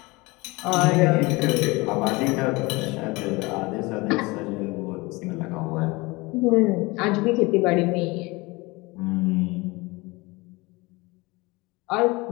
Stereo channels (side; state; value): right; quieter; 23.8 dB